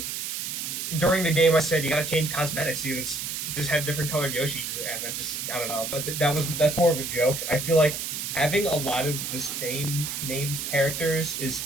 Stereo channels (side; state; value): right; noise; hiss, 4 dB below the sound